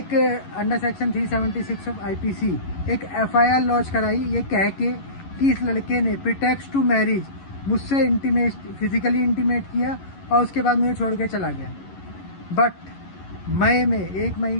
अंडर सेक्शन 376 ऑफ आईपीसी एक एफआईआर लॉन्च कराई, ये कह के कि इस लड़के ने प्रीटेक्स्ट टू मैरिज मुझसे फिजिकली इंटीमेट किया और उसके बाद मुझे छोड़ के चला गया। बट मई में 1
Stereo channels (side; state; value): right; late; 11 ms